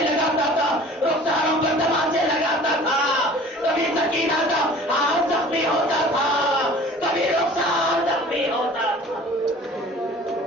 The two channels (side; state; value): both; normal; correlation 0.46